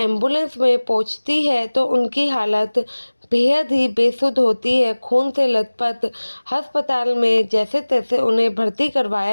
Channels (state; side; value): inverted; both; correlation -1.00